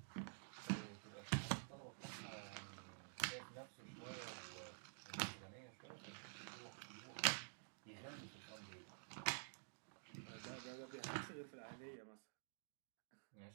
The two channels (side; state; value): left; silent; digital silence